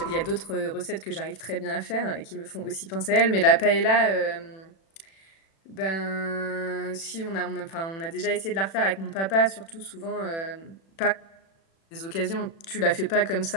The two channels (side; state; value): right; late; 36 ms